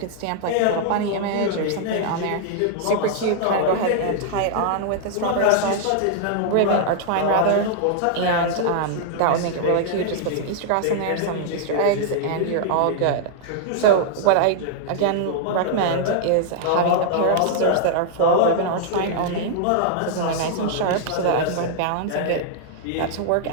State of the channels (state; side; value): different; both; correlation -0.01